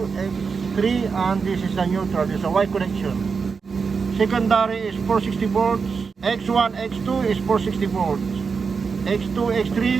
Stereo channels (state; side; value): quieter; left; 5.3 dB